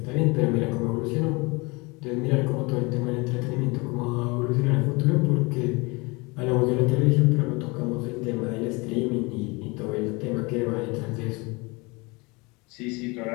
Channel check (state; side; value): quieter; right; 26.6 dB